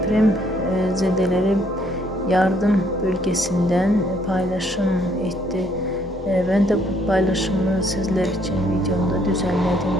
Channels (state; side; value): normal; both; correlation 0.67